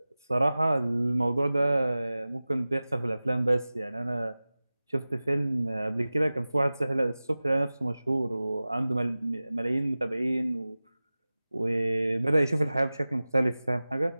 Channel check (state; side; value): inverted; both; correlation -0.97